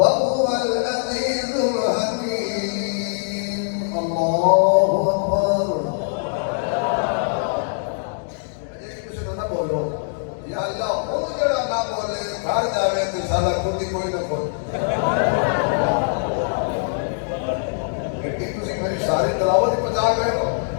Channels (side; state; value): right; silent; digital silence